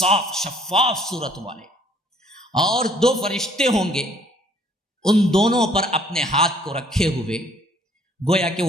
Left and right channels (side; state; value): both; normal; correlation 0.60